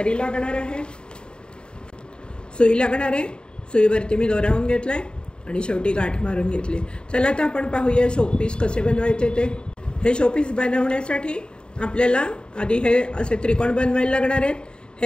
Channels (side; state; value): right; late; 0.050 ms